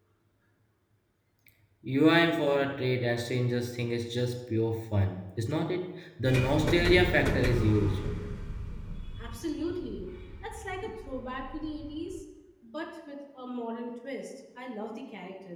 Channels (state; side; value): identical; both; correlation 1.00